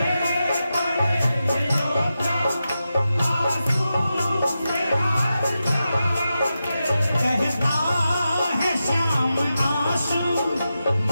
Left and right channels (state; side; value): inverted; both; correlation -0.90